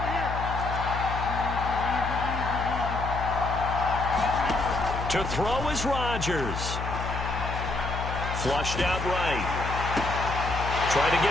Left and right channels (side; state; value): left; noise; hum, 5 dB below the sound